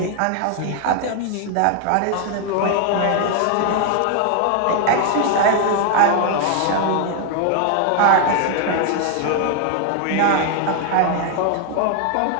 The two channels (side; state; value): both; different; correlation 0.00